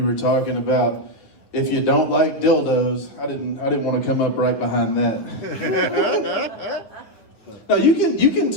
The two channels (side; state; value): right; late; 9.3 ms